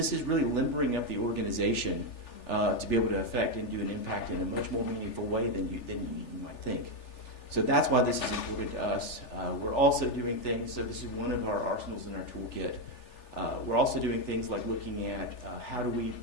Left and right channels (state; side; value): late; right; 3.4 ms